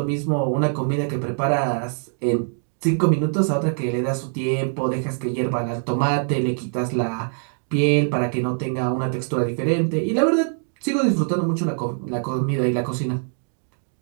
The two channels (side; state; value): left; silent; digital silence